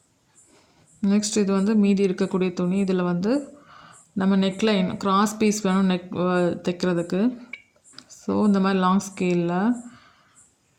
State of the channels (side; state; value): both; identical; correlation 1.00